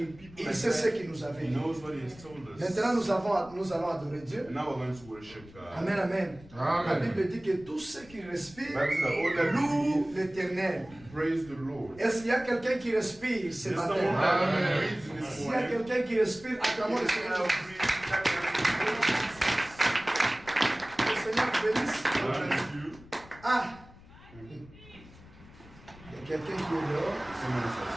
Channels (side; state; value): left; noise; rumble, 21 dB below the sound